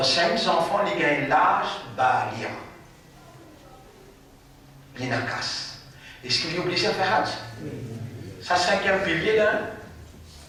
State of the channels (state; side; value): identical; both; correlation 1.00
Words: enfants, les gagnent l'âge balia. L'inakas. Est-ce qu'il est obligé à faire hajj? Ça, 5e pilier là.